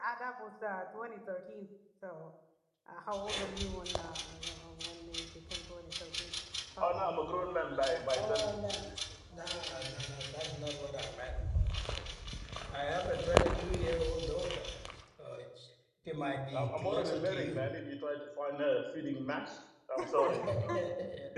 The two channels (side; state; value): both; identical; correlation 1.00